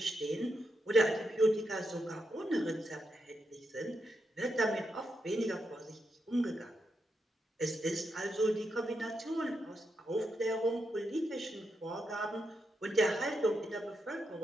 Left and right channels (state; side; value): normal; both; correlation 0.83